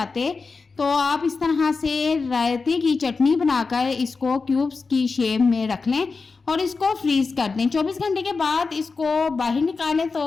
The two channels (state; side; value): quieter; right; 4.4 dB